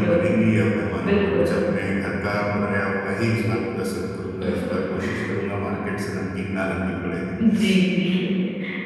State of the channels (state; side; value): identical; both; correlation 1.00